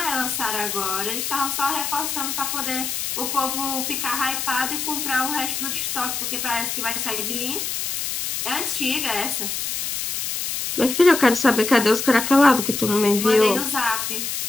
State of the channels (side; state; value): left; noise; hiss, 2 dB below the sound